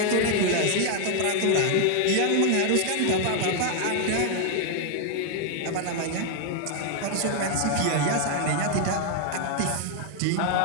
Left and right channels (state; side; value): different; both; correlation 0.00